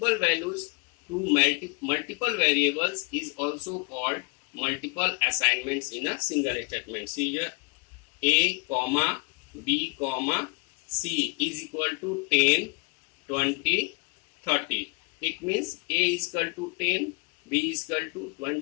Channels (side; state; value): right; quieter; 32.2 dB